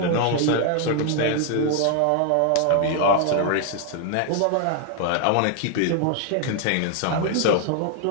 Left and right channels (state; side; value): different; both; correlation 0.00